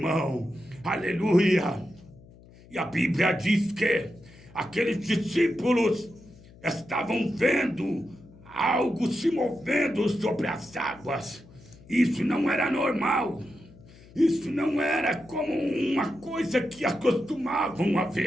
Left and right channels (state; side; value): noise; left; hum, 23 dB below the sound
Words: Aleluia! E a Bíblia diz que aqueles discípulos estavam vendo algo se movendo sobre as águas. Isso não era normal. Isso não era como uma coisa que acostumavam a